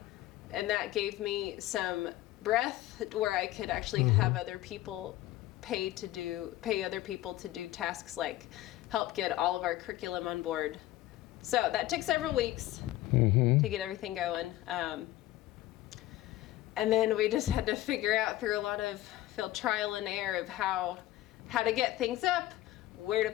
and that gave me some breath where I could actually have other people pay other people to do tasks like help get all of our curriculum on board. So that took several weeks to get everything going. And then we just had to figure out through a lot of trial and error of how to get things up, where to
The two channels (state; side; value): quieter; right; 15.4 dB